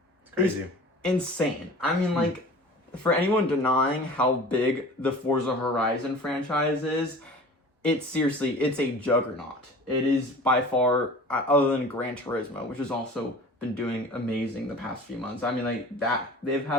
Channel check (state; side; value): normal; both; correlation 0.41